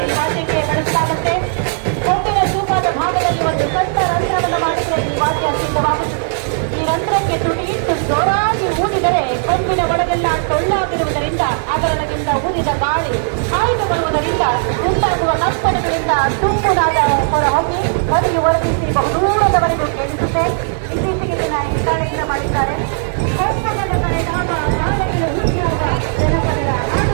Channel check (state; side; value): silent; left; 61 dB below the other